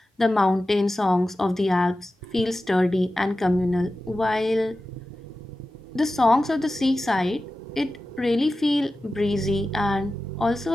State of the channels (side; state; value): both; normal; correlation 0.94